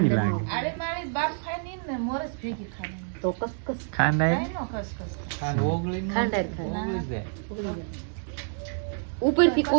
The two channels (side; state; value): left; silent; digital silence